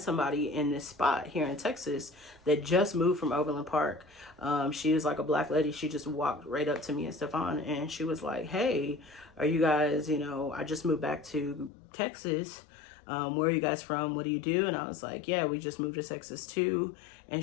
somebody in this spot here in Texas that just moved from Overland Park. She was like a black lady. She just walked right up to me and Stefan, and she was like, "Hey, are you guys, I just moved back to Texas. Where are you guys from? What do you do?" And I was like, "Yeah, we just moved to Texas too."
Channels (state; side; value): drops out; right; at 11.7 s